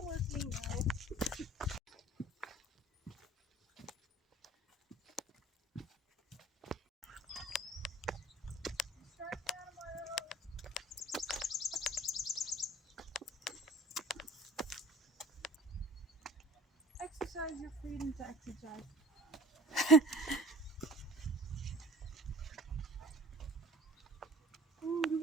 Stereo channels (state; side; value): normal; both; correlation 0.45